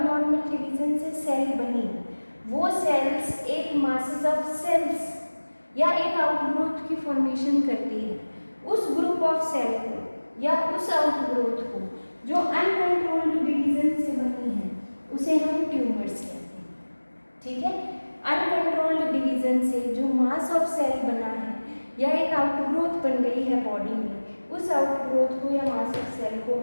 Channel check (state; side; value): inverted; both; correlation -1.00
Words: डिवीजन से सेल बनी, वो सेल्स एक मासेस ऑफ सेल्स या एक आउटग्रोथ की फॉर्मेशन करती है। उस ग्रुप ऑफ सेल को या उस आउटग्रोथ को जो अनकंट्रोल्ड डिवीजन से बनी है उसे हम ट्यूमर्स कहते हैं, ठीक है। अनकंट्रोल्ड डिवीजन से जो मास ऑफ सेल बना है या एक आउटग्रोथ बन गई है बॉडी में, उस आउटग्रोथ को या मास ऑफ सेल को